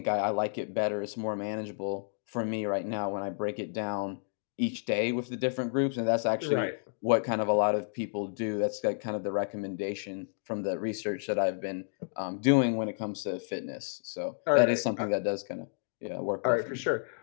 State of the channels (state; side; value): silent; right; digital silence